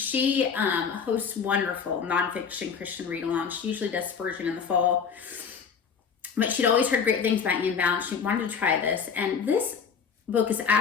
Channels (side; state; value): right; quieter; 6.4 dB